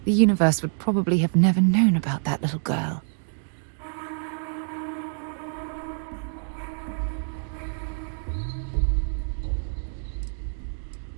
the universe would probably have never known about that little girl.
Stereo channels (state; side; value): silent; left; digital silence